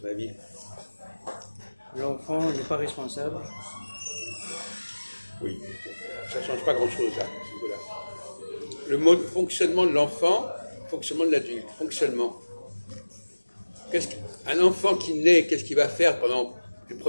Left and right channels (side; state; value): both; inverted; correlation -1.00